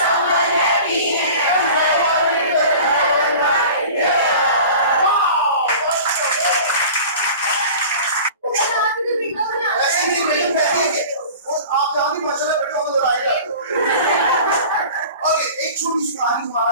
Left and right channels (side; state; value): both; inverted; correlation -0.40